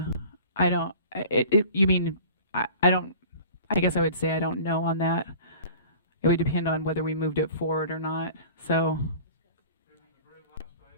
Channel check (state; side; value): inverted; both; correlation -0.44